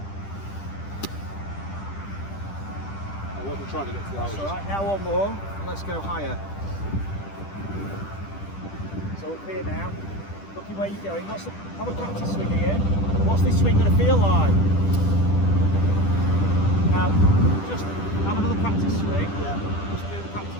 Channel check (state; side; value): late; right; 10 ms